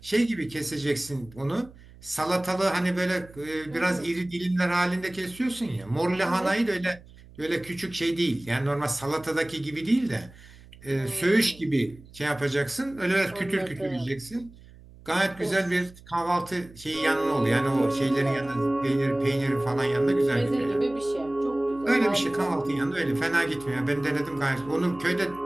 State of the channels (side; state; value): right; noise; hum, 22 dB below the sound